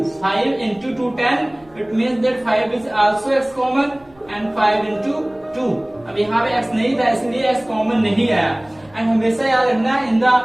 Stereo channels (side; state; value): right; noise; rumble, 30 dB below the sound